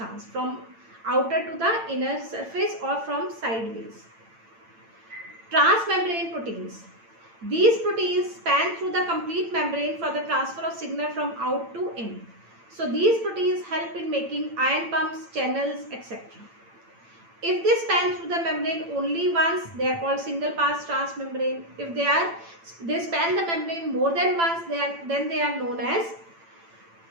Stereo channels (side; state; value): left; late; 8.9 ms